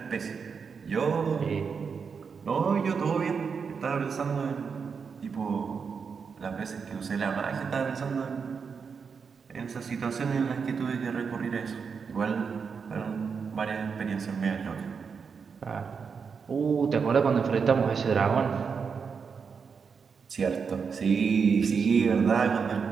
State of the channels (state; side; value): quieter; left; 5.8 dB